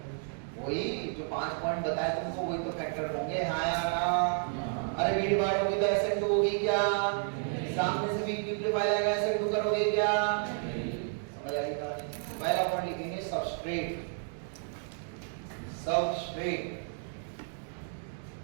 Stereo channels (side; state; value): left; silent; 57 dB below the other